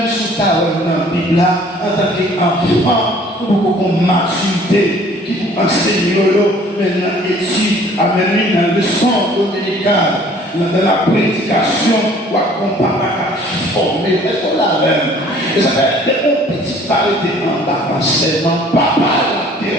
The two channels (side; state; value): both; normal; correlation 0.54